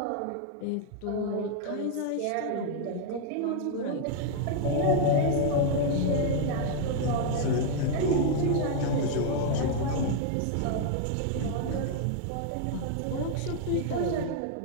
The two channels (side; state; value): both; different; correlation 0.00